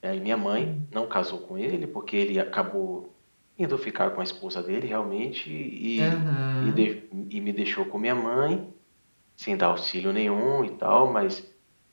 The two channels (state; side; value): inverted; both; correlation -1.00